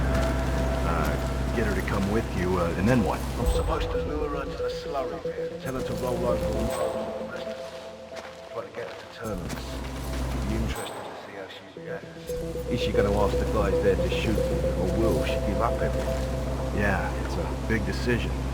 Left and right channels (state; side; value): identical; both; correlation 1.00